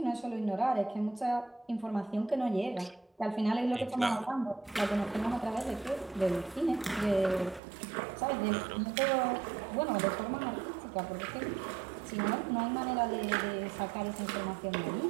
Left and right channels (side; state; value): left; drops out; at 7.6 s